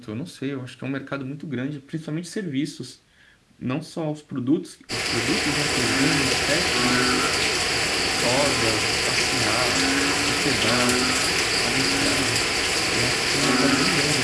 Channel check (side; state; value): both; identical; correlation 1.00